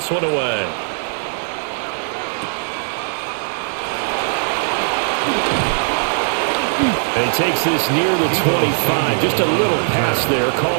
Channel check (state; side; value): silent; left; 63 dB below the other